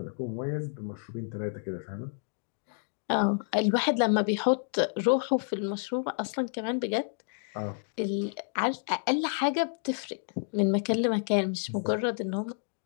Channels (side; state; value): right; silent; 58 dB below the other